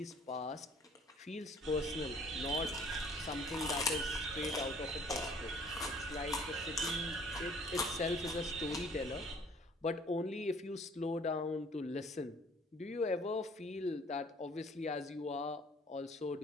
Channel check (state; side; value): normal; both; correlation 0.54